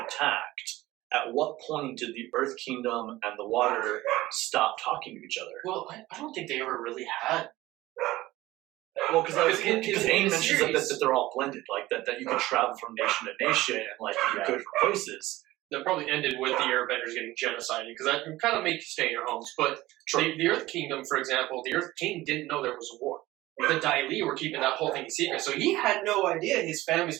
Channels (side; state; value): left; quieter; 17.5 dB